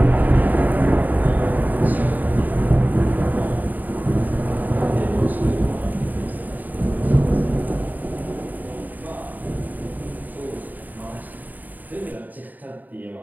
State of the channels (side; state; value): left; late; 0.084 ms